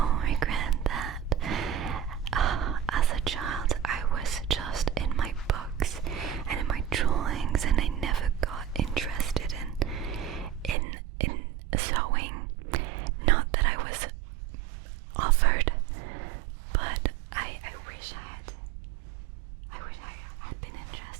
regret that as a child I was just in my books and in my drawings, and I never got interested in sewing. Not that I was offered, but I wish I had been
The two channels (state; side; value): drops out; left; at 10.8 s